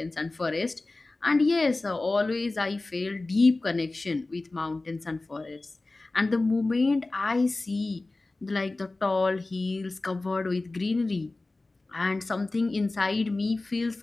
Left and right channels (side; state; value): right; quieter; 3.1 dB